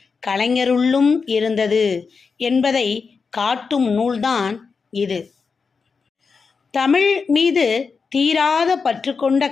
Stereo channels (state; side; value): quieter; right; 5.1 dB